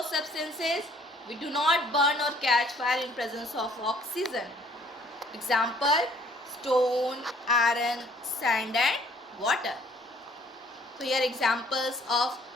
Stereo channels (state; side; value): normal; both; correlation 0.60